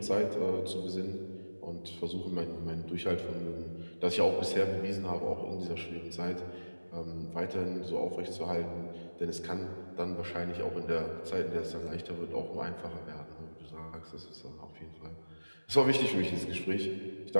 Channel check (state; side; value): inverted; both; correlation -1.00